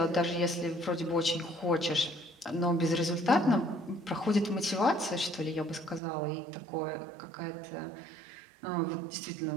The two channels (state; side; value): drops out; left; at 6.0 s